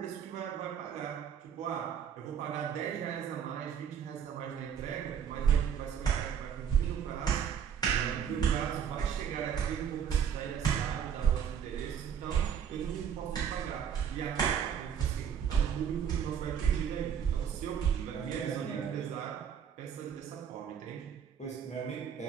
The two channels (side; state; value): left; quieter; 8.3 dB